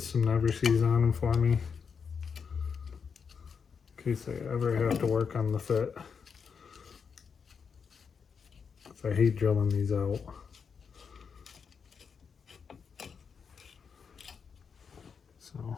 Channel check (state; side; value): quieter; right; 6.2 dB